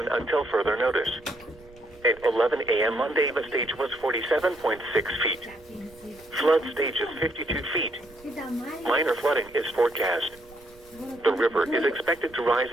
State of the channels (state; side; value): noise; right; rumble, 25 dB below the sound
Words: until further notice. At 11 a.m. Monday, the stage was 47.6 feet. Flood stage is 52 feet. Minor flooding is forecast. The river is expected to rise